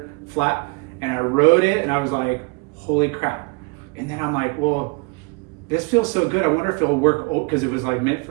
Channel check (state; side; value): quieter; left; 29.3 dB